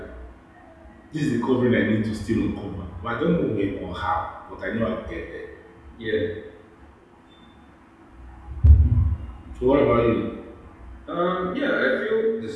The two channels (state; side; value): identical; both; correlation 1.00